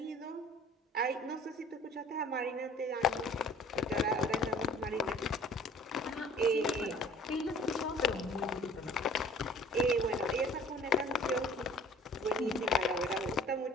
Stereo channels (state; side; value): normal; both; correlation 0.50